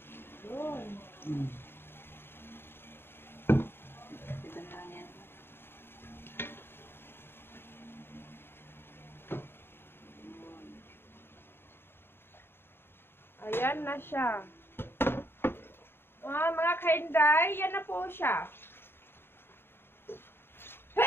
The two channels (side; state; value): right; late; 0.11 ms